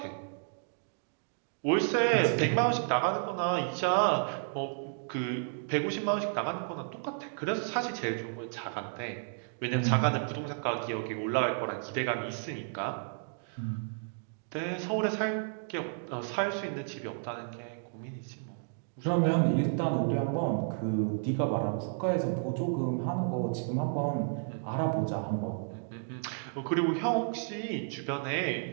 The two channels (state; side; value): silent; left; digital silence